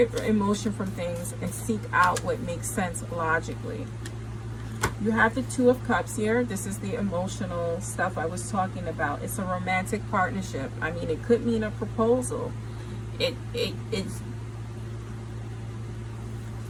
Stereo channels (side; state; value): both; identical; correlation 1.00